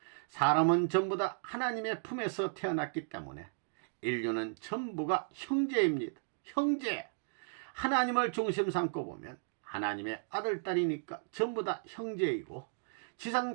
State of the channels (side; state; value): left; silent; digital silence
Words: 사람은 전부 다 하나님의 품에서 태어났기 때문에 인류는 전부가 형제입니다. 형제. 하나님을 중심 삼고 보면 하나님의 아들, 딸이니까 전부 다 형제이고,